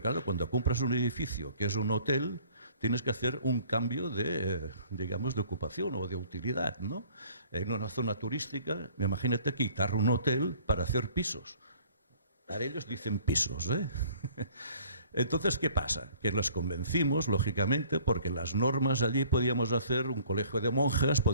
claro, cuando compras un edificio que es un hotel, tienes que hacer un cambio de, digamos, de ocupación o de utilidad, ¿no? En una zona turística, imagínate quitar un hotel para hacer pisos. Para ellos dicen pisos, ¿eh? Entonces, ¿qué pasa? Que los convencimos, lógicamente, porque las normas allí podíamos hacer un colegio de monjas,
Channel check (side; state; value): both; inverted; correlation -0.54